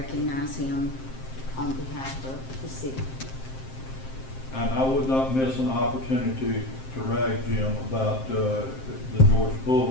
him on behalf of the city. And I would not miss an opportunity to rag Jim about the Georgia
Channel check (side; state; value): right; late; 7.6 ms